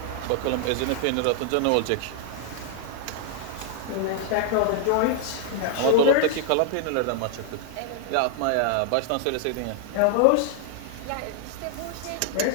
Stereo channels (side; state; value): both; different; correlation 0.00